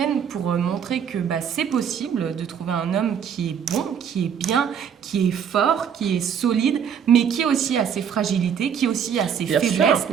pour montrer que c'est possible de trouver un homme qui est bon, qui est bien, qui est fort, qui est solide, mais qui aussi a ses fragilités, qui aussi a ses faiblesses.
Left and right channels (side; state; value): left; quieter; 7.8 dB